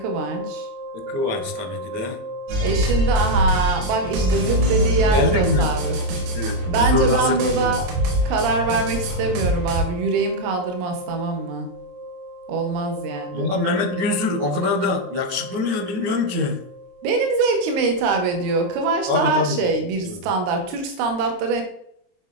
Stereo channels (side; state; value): left; late; 23 ms